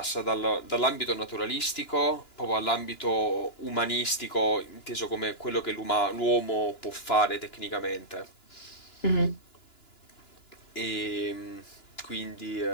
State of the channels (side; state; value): right; late; 2.9 ms